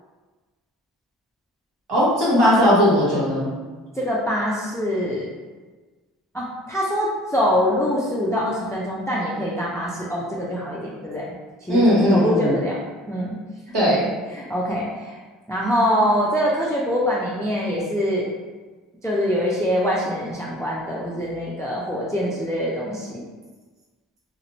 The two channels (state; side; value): normal; both; correlation 0.49